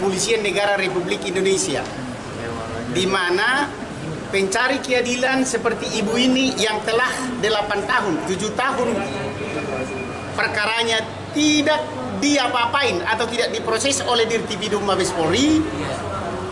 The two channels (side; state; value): both; identical; correlation 1.00